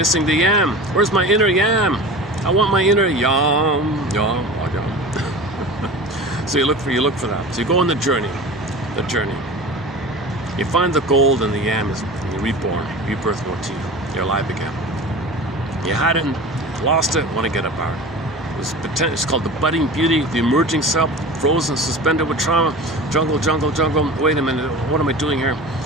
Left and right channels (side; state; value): both; normal; correlation 0.35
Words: the yam. Where's my inner yam? I want my inner yam. So you look for that. So you go on the journey. the journey. You find the gold in the yam is reborn, rebirth motif. You're alive again. You had it, lost it, want to get it back. It's called the budding beauty, the emerging self, frozen, suspended with trauma, jungle, jungle, jungle. Wait a minute, what am I doing here?